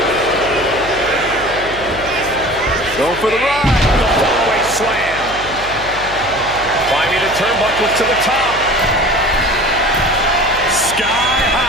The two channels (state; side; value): noise; left; hum, 14 dB below the sound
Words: Going for the ride. The fallaway slam. Climbing the turnbuckles to the top. Sky